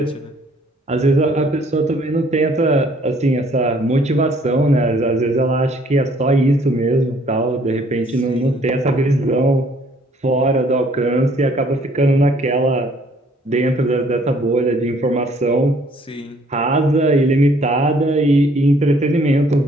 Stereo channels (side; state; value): both; normal; correlation 0.61